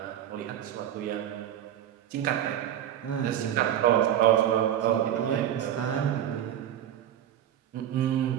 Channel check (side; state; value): left; quieter; 10.8 dB